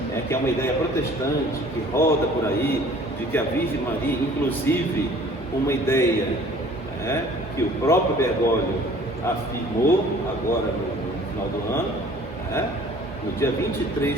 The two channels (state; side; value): normal; both; correlation 0.51